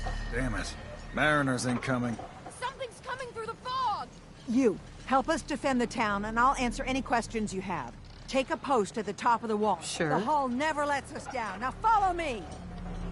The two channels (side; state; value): both; identical; correlation 1.00